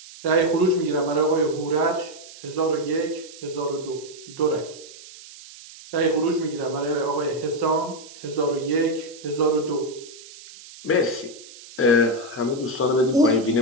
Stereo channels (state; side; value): noise; right; hiss, 18 dB below the sound